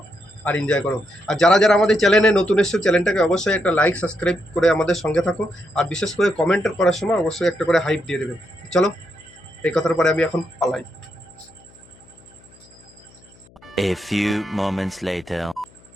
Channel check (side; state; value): left; noise; hum, 27 dB below the sound